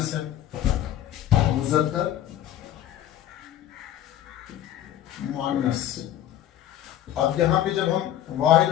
ہے, مذکر مؤنث. اب یہاں پہ جب ہم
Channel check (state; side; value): quieter; right; 11.9 dB